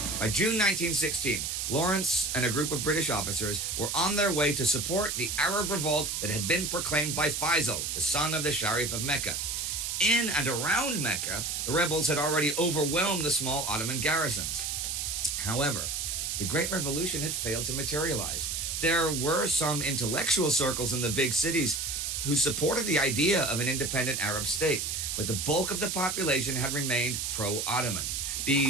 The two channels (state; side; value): noise; right; hiss, 2 dB below the sound